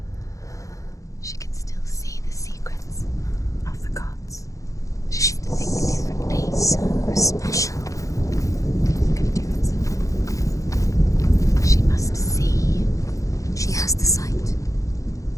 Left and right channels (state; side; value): late; right; 0.16 ms